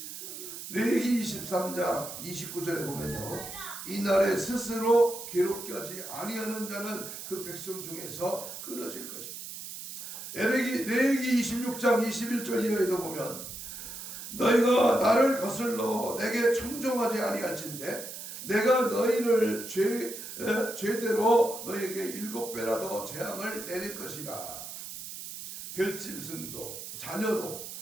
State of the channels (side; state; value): right; noise; hiss, 10 dB below the sound